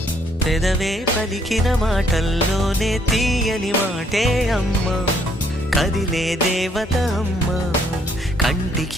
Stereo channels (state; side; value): normal; both; correlation 0.67